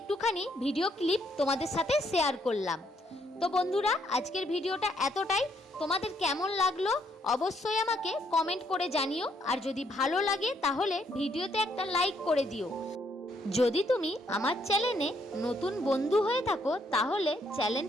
ভিডিও ক্লিপ তোমাদের সাথে শেয়ার করলাম। তো বন্ধুরা, আজকের ভিডিওটা এতটাই। তোমাদের কেমন লাগলো অবশ্যই আমাকে কমেন্ট করে জানিও। আর যদি ভালো লাগে তাহলে ভিডিওতে একটা লাইক করে দিও। যদি তুমি আমার চ্যানেলে নতুন বন্ধু হয়ে থাকো তাহলে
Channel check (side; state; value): both; normal; correlation 0.72